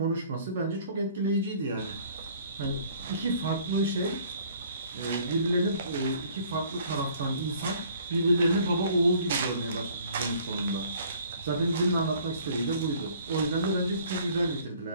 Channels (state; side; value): inverted; both; correlation -0.56